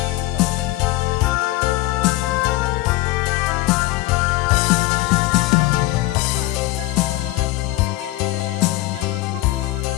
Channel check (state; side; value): quieter; right; 18.0 dB